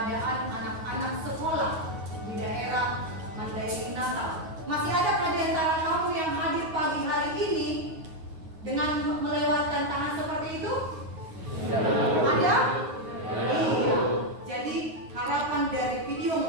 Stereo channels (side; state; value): left; late; 9.4 ms